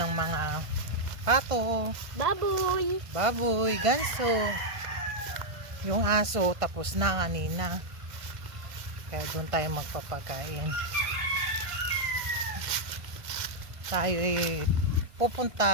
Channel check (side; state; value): left; late; 1.5 ms